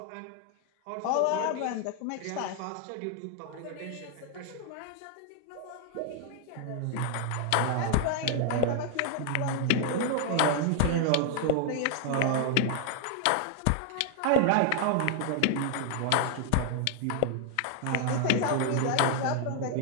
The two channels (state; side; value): different; both; correlation 0.00